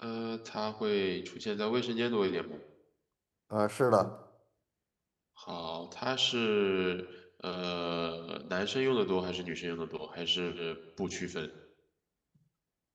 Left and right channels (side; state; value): both; identical; correlation 1.00